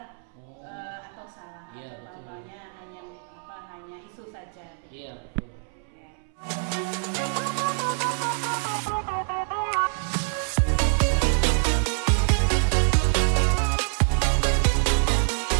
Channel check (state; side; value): silent; left; 61 dB below the other